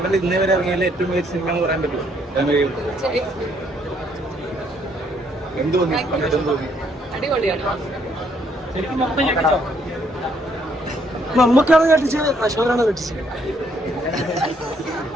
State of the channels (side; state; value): both; normal; correlation 0.69